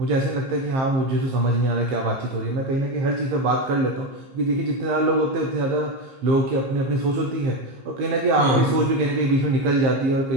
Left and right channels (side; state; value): left; late; 15 ms